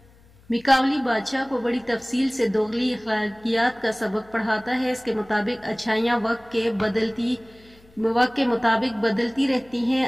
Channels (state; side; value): noise; left; hum, 28 dB below the sound